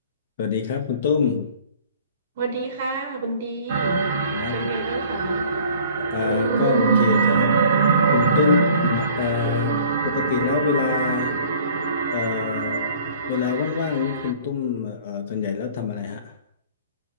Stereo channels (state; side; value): inverted; both; correlation -0.50